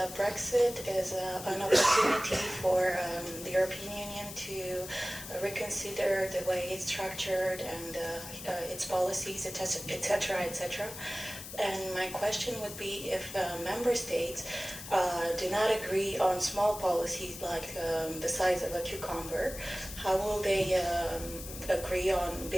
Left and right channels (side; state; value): left; noise; hiss, 11 dB below the sound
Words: Brexit is an opportunity for the European Union to reconsider the way it's structured and its policies, etc., etc. And my question would be, if member states do not agree on small policies like the size of a cucumber, how will they agree on